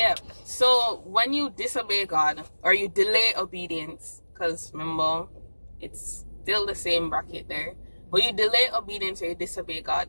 So when you disobey God or you delay obedience, because remember, it's still the same bracket there. When you delay obedience or you disobey God,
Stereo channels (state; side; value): inverted; both; correlation -1.00